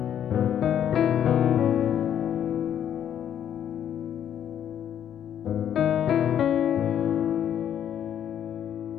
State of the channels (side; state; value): right; quieter; 9.8 dB